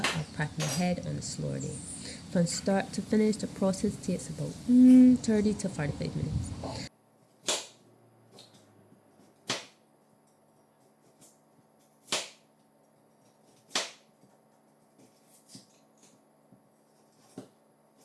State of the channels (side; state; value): both; identical; correlation 1.00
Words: or prepping ahead on a slower day. From start to finish, the process takes about 30 to 45 minutes.